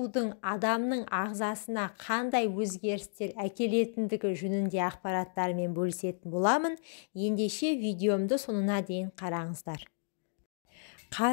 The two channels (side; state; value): right; silent; digital silence